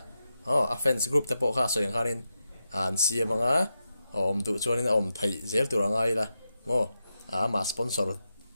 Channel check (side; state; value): both; inverted; correlation -0.88